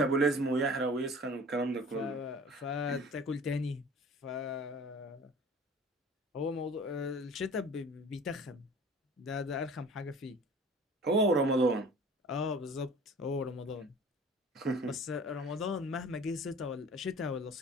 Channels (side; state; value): both; normal; correlation 0.45